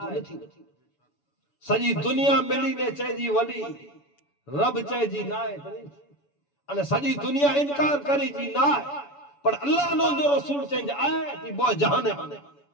تو نہیں تھی سجی دنیا ملی نے چاہے جی ولی رب چاہے جی نہ ہے تو نہیں تھی سجی دنیا انکار کری جی نہ ہے پر اللہ نے جو رسول چاہیں جی آئے تھی بہت جہانے ہونے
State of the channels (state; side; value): late; right; 7.0 ms